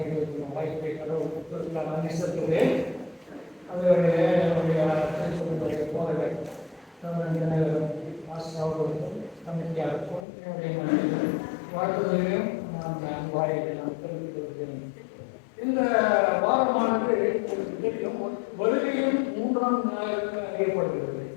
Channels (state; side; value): drops out; right; at 10.2 s